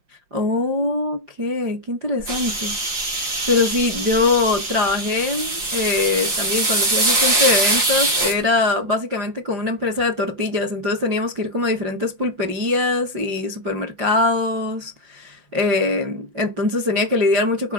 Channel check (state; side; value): late; left; 5.7 ms